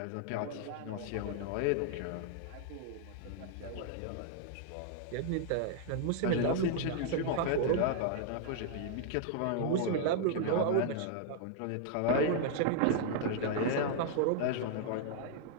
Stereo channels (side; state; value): both; different; correlation -0.01